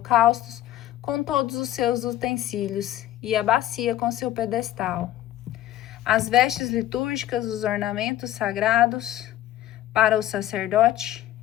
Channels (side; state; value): right; quieter; 13.5 dB